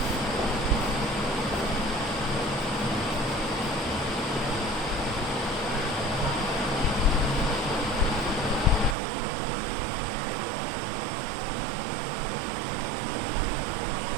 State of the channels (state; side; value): drops out; left; at 9.0 s